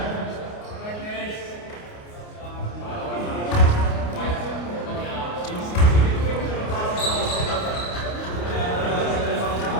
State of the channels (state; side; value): late; right; 29 ms